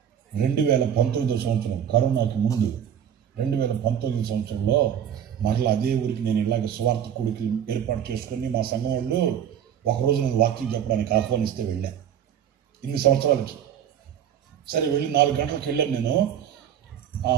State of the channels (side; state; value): left; quieter; 9.2 dB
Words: 2019వ సంవత్సరం కరోనాకి ముందు 2019 సంవత్సరంలో మరలా అదే ఊరికి నేను ఇలాగ స్వార్థ కూడికి ఏర్పాటు చేసుకుని మా సంఘం వాళ్ళు ఒకరోజు నేను వాకింగ్ చెప్పడానికి ఆహ్వానిస్తే వెళ్ళా. ఇన్ని సంవత్సరాలకి సరే వెళ్ళి 4 గంటలకు వెళ్ళాను నేను.